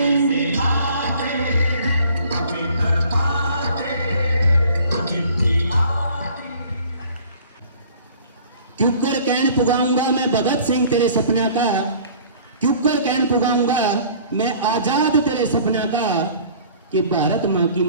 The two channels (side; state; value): both; inverted; correlation -0.51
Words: क्यों कर कहन पुगाऊंगा मैं भगत सिंह तेरे सपना का, क्यों कर कहन पुगाऊंगा मैं आजाद तेरे सपना का, कि भारत माँ की